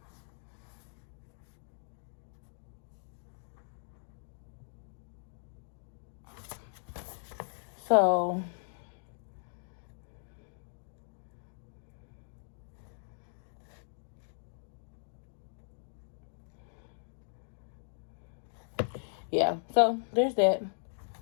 So yeah, so there's that.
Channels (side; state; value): right; silent; digital silence